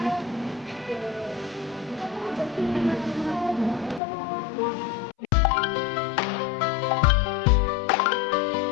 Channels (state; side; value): drops out; right; at 4.0 s